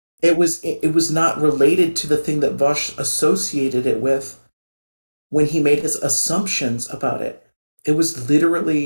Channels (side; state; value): both; inverted; correlation -1.00